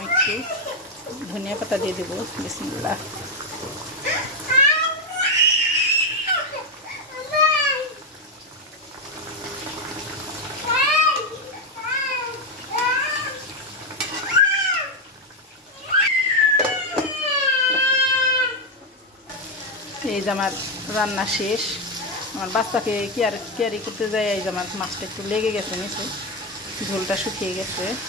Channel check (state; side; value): normal; both; correlation 0.06